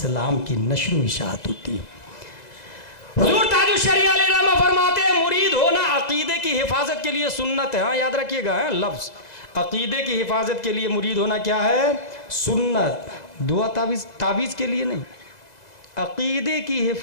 की नश्र व इशाअत होती है। हुजूर ताजुल शरिया अलैहिर्रहमा फरमाते हैं मुरीद होना अकीदे की हिफाजत के लिए सुन्नत है। हाँ, याद रखिएगा है लफ्ज़, अकीदे की हिफाजत के लिए मुरीद होना क्या है? सुन्नत। दुआ तावीज़ के लिए नहीं, अकीदे की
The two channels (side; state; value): right; late; 2.0 ms